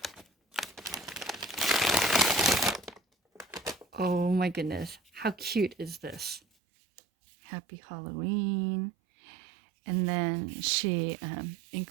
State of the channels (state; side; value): drops out; left; at 6.4 s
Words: Oh my goodness, how cute is this? Happy Halloween. And then she